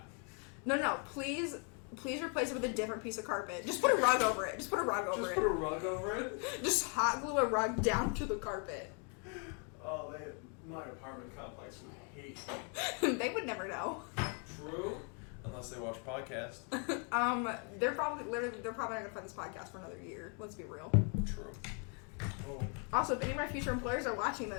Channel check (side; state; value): right; quieter; 38.6 dB